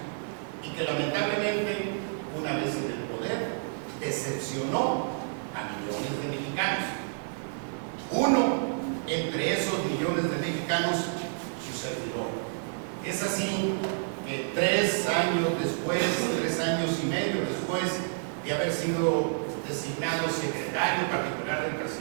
y que lamentablemente, una vez en el poder, decepcionó a millones de mexicanos. Uno entre esos millones de mexicanos, su servidor. Es así que 3 años después, 3 años y medio después de haber sido designado secretario particular del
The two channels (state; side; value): silent; left; 58 dB below the other